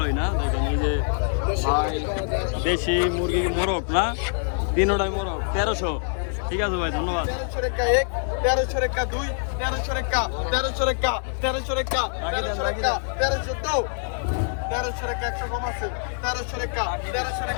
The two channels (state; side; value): silent; right; 62 dB below the other